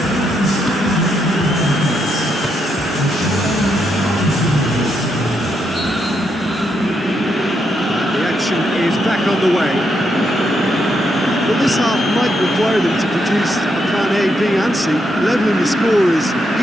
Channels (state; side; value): normal; both; correlation 0.79